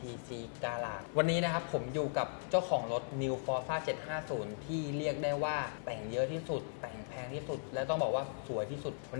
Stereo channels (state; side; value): silent; right; 53 dB below the other